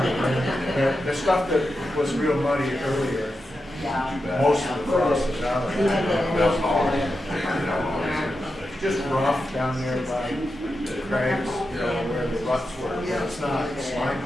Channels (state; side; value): normal; both; correlation 0.89